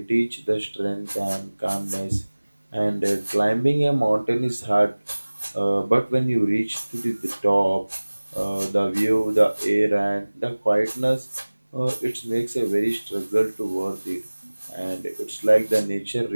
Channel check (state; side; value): inverted; both; correlation -1.00